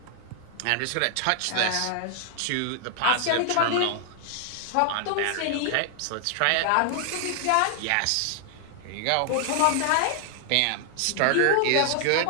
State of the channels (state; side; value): different; both; correlation 0.00